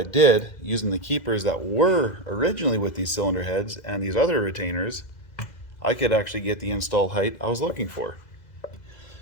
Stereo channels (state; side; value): late; right; 2.0 ms